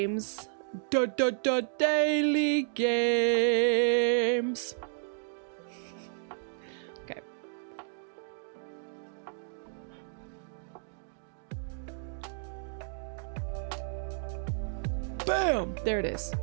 Daily games. Okay. Bam! There it is.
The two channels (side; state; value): left; silent; digital silence